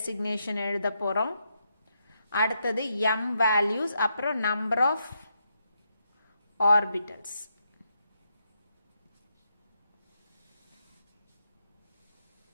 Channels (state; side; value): inverted; both; correlation -0.81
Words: எழுத போறோம். அடுத்தது m values, அப்புறம் number of orbitals.